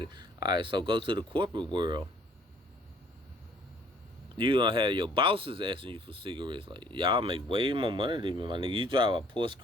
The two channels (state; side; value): normal; both; correlation 0.59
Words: it. Alright, so go to the corporate world. You gonna have your bosses asking you for cigarettes. Like, y'all make way more money than me, my nigga. You drive a Porsche